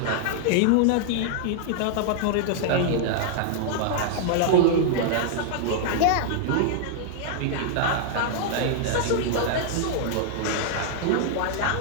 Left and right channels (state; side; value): different; both; correlation -0.01